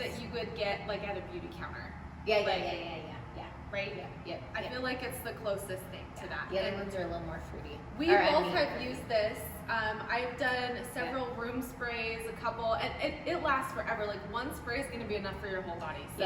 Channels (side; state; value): both; identical; correlation 1.00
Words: that you would get like at a beauty counter. Yeah. Right? Yep. I feel like it's the closest thing to that. The other ones are a little more fruity. We both have used this. I've done several room sprays, a couple, and it lasts forever. Like one spray is going to be enough for your whole body.